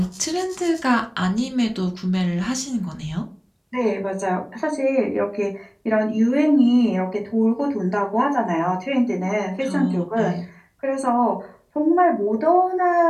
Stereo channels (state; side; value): identical; both; correlation 1.00